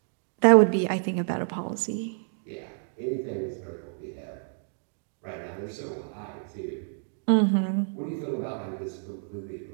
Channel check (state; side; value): silent; left; 58 dB below the other